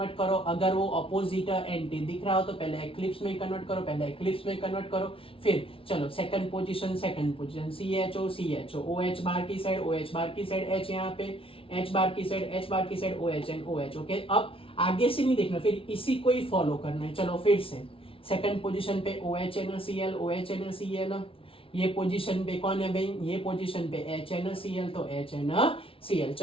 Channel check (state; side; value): late; right; 0.26 ms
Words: करो। अगर वो अपोजिट एंटी दिख रहा हो तो पहले एक्लिप्स में कन्वर्ट करो, पहले एक्लिप्स में कन्वर्ट करो। फिर चलो second position CHO CHO, OH बार की साइड, OH बार की साइड H, यहाँ पे H बार की side OH and OH। Okay, अब आगे से नहीं देखना, फिर इसी को ही फॉलो करना है। चलो फिर से सेकंड पोजीशन पे OHNCl, OHNCl। ये पोजीशन पे कौन है भाई, ये पोजीशन पे HNCl, तो HNCl।